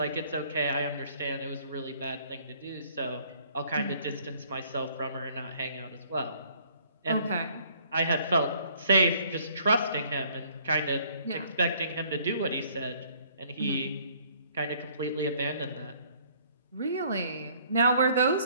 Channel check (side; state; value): both; inverted; correlation -0.60